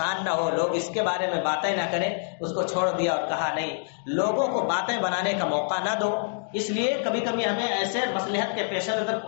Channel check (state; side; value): silent; right; digital silence